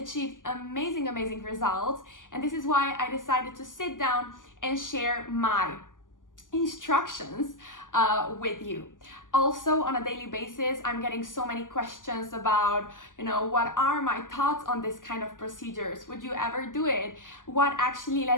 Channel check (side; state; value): right; late; 0.88 ms